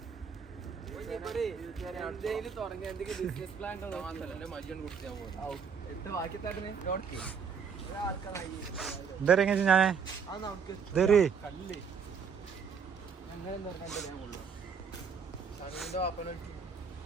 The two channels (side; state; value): left; quieter; 6.2 dB